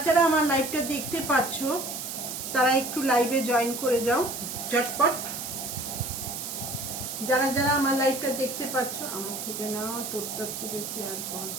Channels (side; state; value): right; noise; hiss, 6 dB below the sound